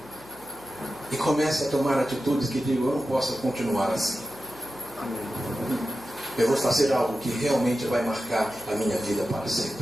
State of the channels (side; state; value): left; noise; hum, 25 dB below the sound